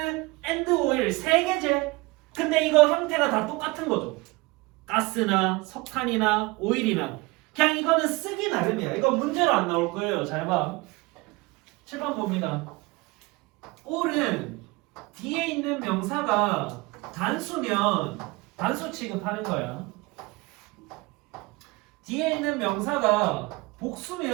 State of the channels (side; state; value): left; quieter; 23.8 dB